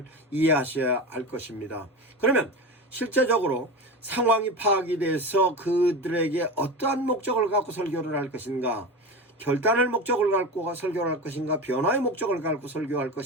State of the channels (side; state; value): both; normal; correlation 0.26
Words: 이해하셔야 할 것입니다. 그러면 실제적으로 상황이 파악이 돼서 그들에게 어떠한 목적을 갖고 설교를 할 것인가, 결단을 목적을 갖고 설교를 할 것인가, 변화의 목적을 갖고 설교할